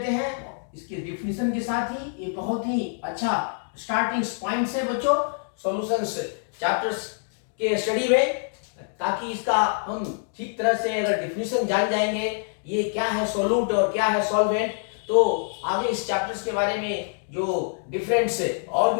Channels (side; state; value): right; silent; 61 dB below the other